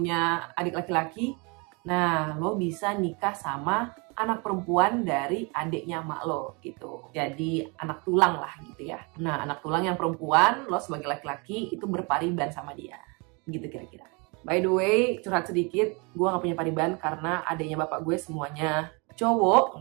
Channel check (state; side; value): quieter; left; 30.6 dB